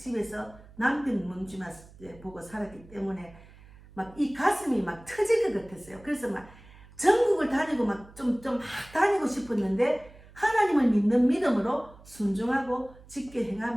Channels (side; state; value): right; noise; hum, 22 dB below the sound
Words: 남편 문주만 보고 살았기 때문에 막 이 가슴이 막 터질 것 같았어요. 그래서 막 전국을 다니고 막 좀 다니고 싶었는데 하나님을 믿는 믿음으로 순종하고 직계